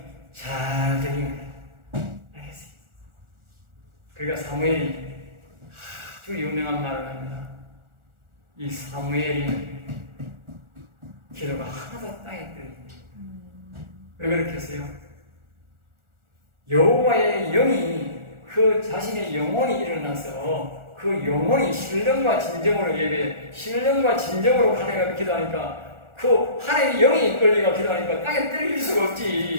잘 들린 거예요. 알겠어요. 그러니까 사무엘이 아주 유명한 말을 합니다. 이 사무엘이 기도가 하나도 땅에 떨어집니다. 왜 그렇게 했어요? 여호와의 영이 그 자신의 영혼이 일어나서 그 영혼이 신령과 진정으로 예배, 신령과 진정으로 하나님과 기도하니까 그 하나님의 영이 이끌리고 기도하니까 땅에 떨릴 수가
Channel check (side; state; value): left; late; 1.4 ms